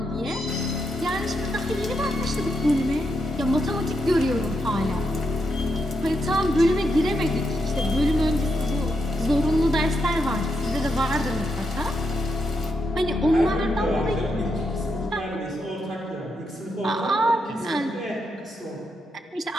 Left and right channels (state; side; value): normal; both; correlation 0.82